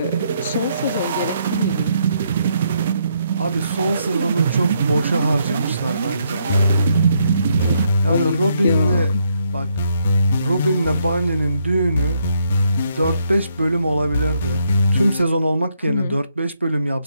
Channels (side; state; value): both; inverted; correlation -0.75